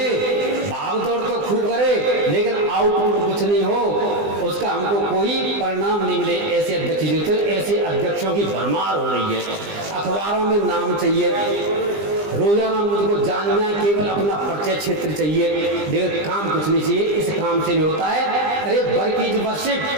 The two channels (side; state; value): left; late; 20 ms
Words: भागदौड़ तो खूब करे लेकिन आउटपुट कुछ नहीं हो, उसका हमको कोई परिणाम नहीं मिले, ऐसे अध्यक्ष की जरूरत है। ऐसे अध्यक्षों की भरमार हो रही है। अखबारों में नाम चाहिए, रोजाना मुझको जानना, केवल अपना परिचय क्षेत्र चाहिए, लेकिन काम कुछ नहीं चाहिए। इस काम से नहीं होता है। अरे वर्क